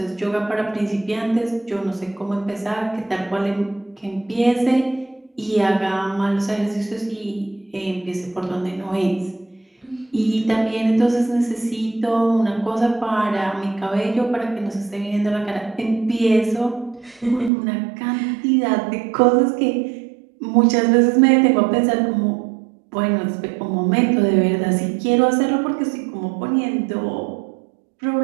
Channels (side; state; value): left; drops out; at 17.5 s